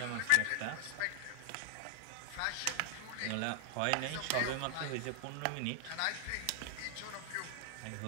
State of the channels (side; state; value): both; different; correlation 0.00